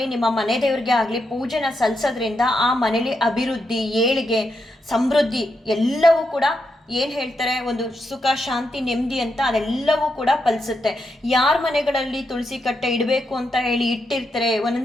ನಿಮ್ಮ ಮನೆ ದೇವರಿಗೆ ಆಗಲಿ ಪೂಜೆನ ಸಲ್ಲಿಸೋದ್ರಿಂದ ಆ ಮನೇಲಿ ಅಭಿವೃದ್ಧಿ ಏಳಿಗೆ ಸಮೃದ್ಧಿ ಎಲ್ಲವೂ ಕೂಡ ಏನು ಹೇಳ್ತಾರೆ, ಒಂದು ಸುಖ ಶಾಂತಿ ನೆಮ್ಮದಿ ಅಂತ ಅದೆಲ್ಲವೂ ಕೂಡ ಫಲಿಸುತ್ತೆ. ಯಾರ ಮನೆಗಳಲ್ಲಿ ತುಳಸಿ ಕಟ್ಟೆ ಇಡಬೇಕು ಅಂತ ಹೇಳಿ ಇಟ್ಟಿರ್ತಾರೆ,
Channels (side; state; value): both; normal; correlation 0.83